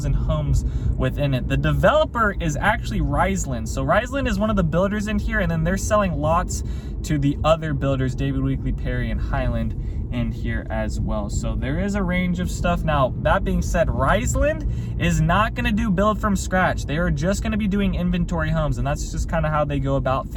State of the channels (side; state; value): both; identical; correlation 1.00